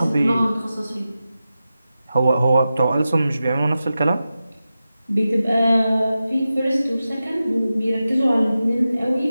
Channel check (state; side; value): inverted; both; correlation -0.92